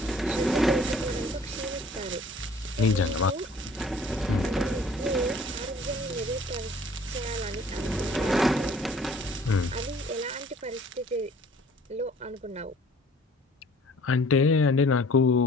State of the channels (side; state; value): both; normal; correlation 0.53